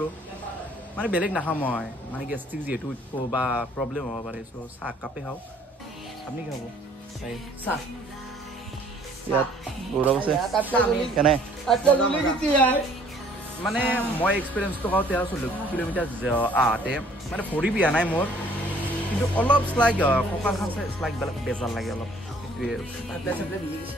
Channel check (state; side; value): normal; both; correlation 0.58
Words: মানে বেলেগ নাখাওঁ মই মানে গেষ্ট্ৰিক যিহেতু বা প্ৰব্লেম হ'ব পাৰে চ' চাহ কাপে খাওঁ আপুনি কি খাব চাহ ইয়াত গৌৰৱ আছে কেনে মানে মই এক্সপিৰিয়েঞ্চটো খাওঁ 13-14 কিলোমিটাৰ আহোঁতে মানে ভৰি বিয়া নাই মোৰ কিন্তু অলপ শ্লাইক কঁকালখন শ্লাইক বেজাৰ লাগে অলপ সেইটোৱে